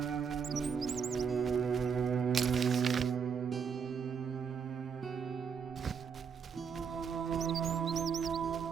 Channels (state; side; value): quieter; left; 6.5 dB